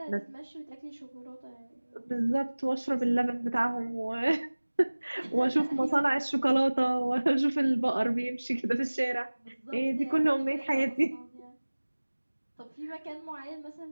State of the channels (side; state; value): both; inverted; correlation -1.00